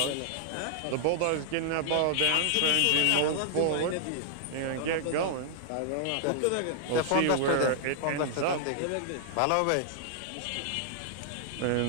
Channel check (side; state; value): both; different; correlation 0.00